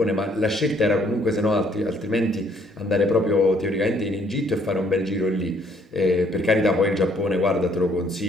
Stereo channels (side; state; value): both; normal; correlation 0.65